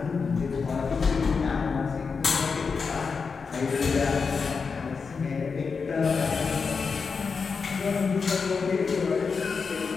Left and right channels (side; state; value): right; quieter; 5.2 dB